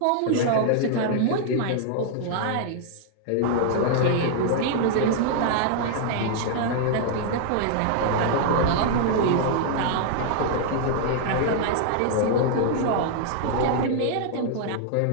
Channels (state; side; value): different; both; correlation -0.01